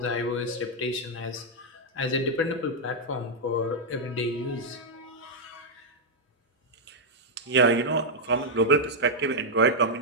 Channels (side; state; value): both; normal; correlation -0.04